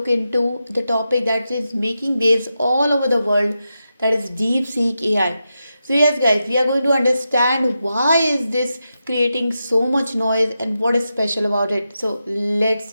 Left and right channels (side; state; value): both; inverted; correlation -0.89